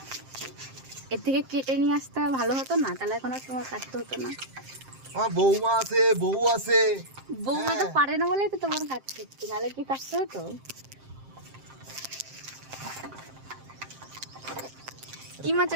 এর থেকে কেটে নিয়ে আসতে ভালো হতো না, তাহলে এখন আর তোমার কাটতে হতো না। আমার বৌমা আছে, বউ আছে। বৌমা তো পারে না বলেই তো তোমার কাটতে হচ্ছে, নাহলে কি কাটতে হতো? কি মাছ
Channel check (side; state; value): left; late; 7.6 ms